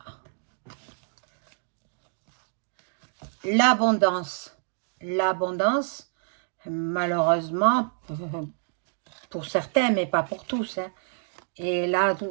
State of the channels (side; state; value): left; silent; digital silence